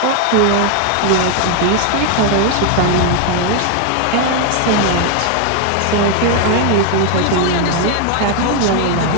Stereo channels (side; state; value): both; different; correlation 0.01